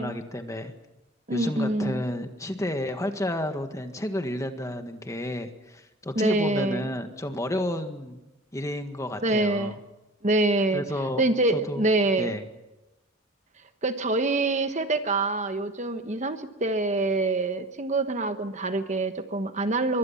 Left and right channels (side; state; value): both; normal; correlation 0.41